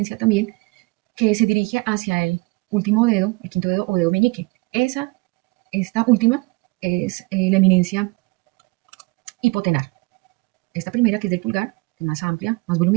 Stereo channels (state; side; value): quieter; left; 26.3 dB